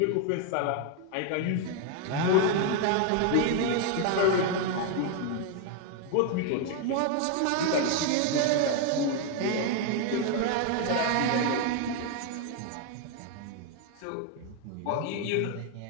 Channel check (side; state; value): both; different; correlation 0.01